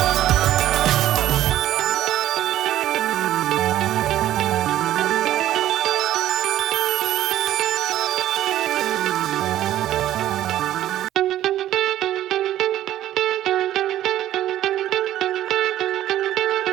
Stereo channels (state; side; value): quieter; left; 13.1 dB